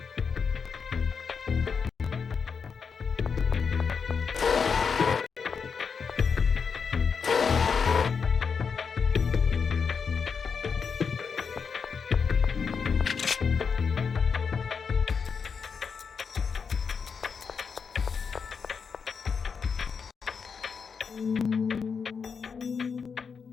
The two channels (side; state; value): right; quieter; 5.9 dB